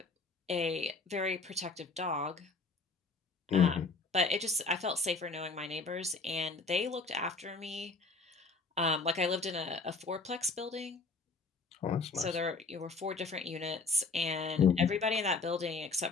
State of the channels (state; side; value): quieter; right; 3.9 dB